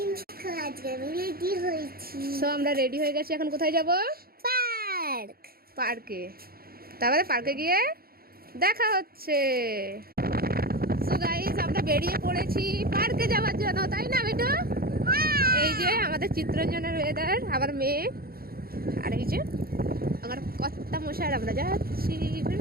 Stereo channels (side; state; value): left; late; 0.44 ms